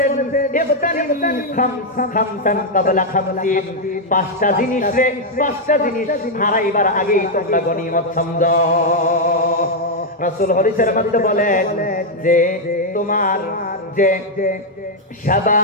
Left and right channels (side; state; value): both; normal; correlation 0.00